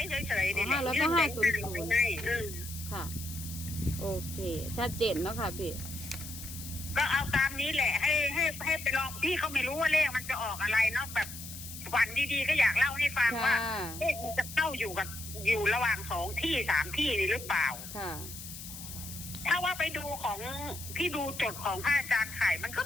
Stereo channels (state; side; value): noise; left; hiss, 11 dB below the sound